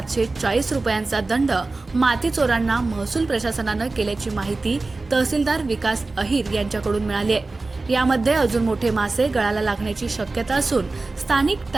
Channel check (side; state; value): left; quieter; 3.4 dB